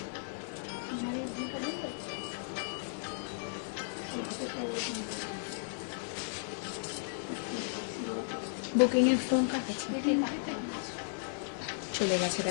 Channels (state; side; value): silent; right; digital silence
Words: বুকিং এর ফোন কাটেছে, চলে গেছে